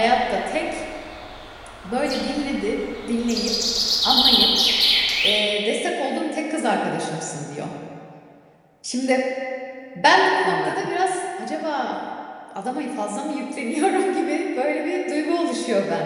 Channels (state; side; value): identical; both; correlation 1.00